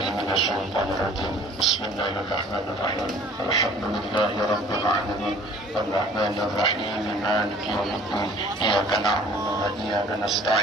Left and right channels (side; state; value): both; normal; correlation 0.51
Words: minasyaitonir rajim. Bismillahirrahmanirrahim. Alhamdulillahi rabbil alamin. Arrahmanir rahim. Maliki yaumiddin. Iyyaka na'budu wa iyyaka